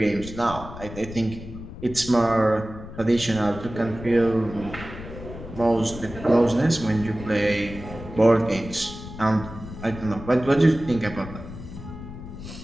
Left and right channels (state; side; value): noise; left; rumble, 12 dB below the sound